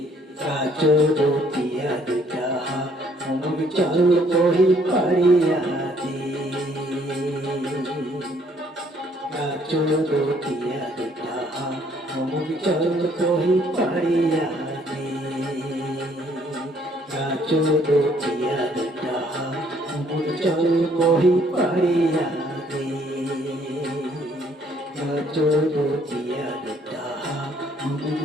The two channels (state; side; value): normal; both; correlation 0.64